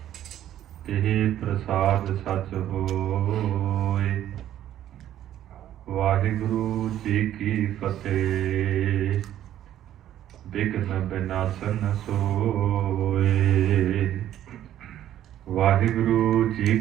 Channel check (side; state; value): left; quieter; 11.8 dB